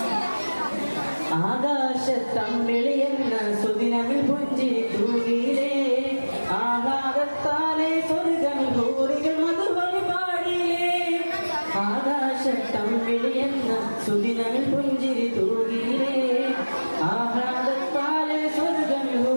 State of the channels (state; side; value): inverted; both; correlation -1.00